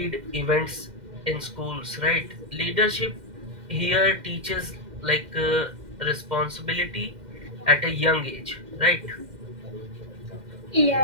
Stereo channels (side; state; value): left; late; 2.1 ms